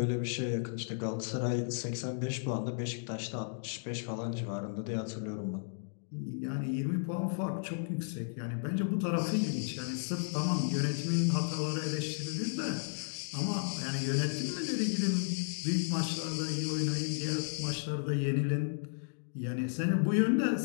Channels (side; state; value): right; silent; digital silence